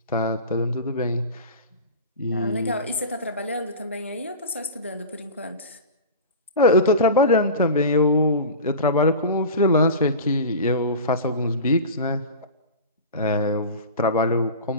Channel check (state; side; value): inverted; both; correlation -0.31